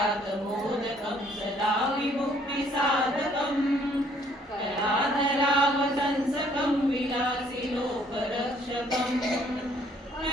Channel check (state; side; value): normal; both; correlation 0.62